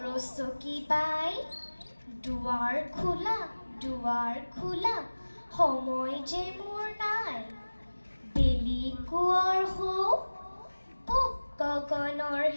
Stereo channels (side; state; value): both; inverted; correlation -1.00